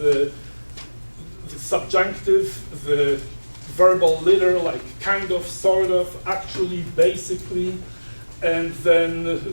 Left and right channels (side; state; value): both; inverted; correlation -1.00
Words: subjunctive, the verbal litter, like kind of, sort of, actually, basically, and then